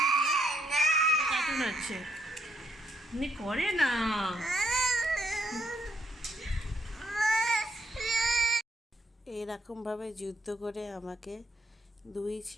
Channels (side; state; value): both; normal; correlation 0.74